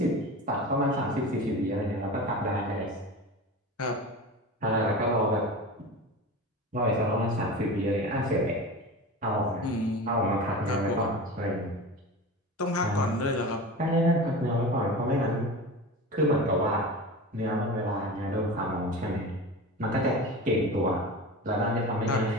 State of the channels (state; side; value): normal; both; correlation 0.31